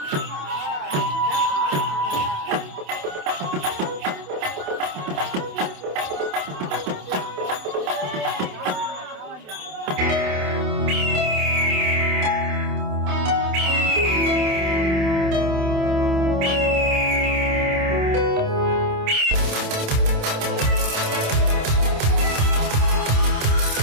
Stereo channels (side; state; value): left; late; 27 ms